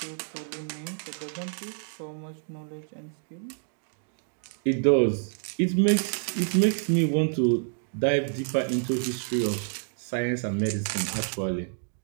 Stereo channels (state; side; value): silent; left; digital silence